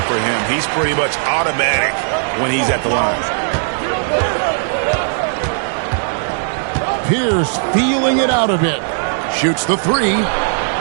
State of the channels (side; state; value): left; silent; digital silence